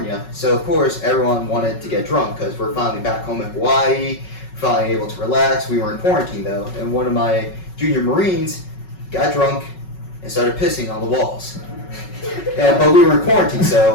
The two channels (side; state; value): right; late; 5.4 ms